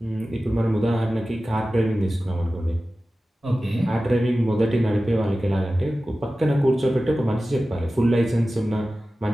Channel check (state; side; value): normal; both; correlation 0.95